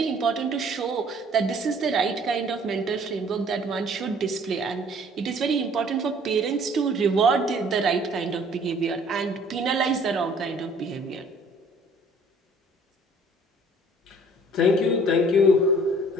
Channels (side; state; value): both; normal; correlation 0.55